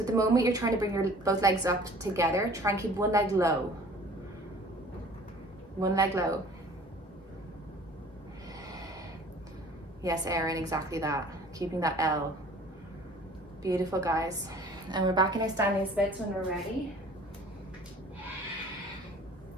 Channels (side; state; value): both; normal; correlation 0.49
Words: at the moment you're trying to bring your both legs up together, try and keep one leg low. One leg low. Yes, Erin, exactly that. Keeping that L. Beautiful, guys. And we're back in our standing splits when we're ready.